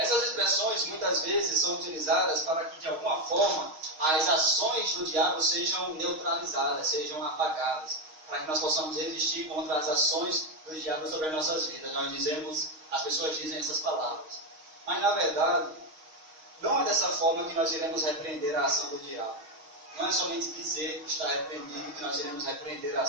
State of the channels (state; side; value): late; left; 6.4 ms